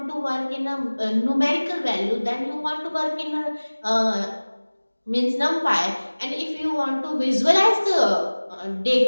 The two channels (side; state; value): both; inverted; correlation -1.00